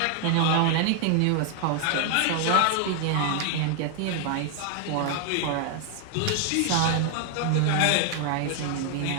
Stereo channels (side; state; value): both; different; correlation 0.00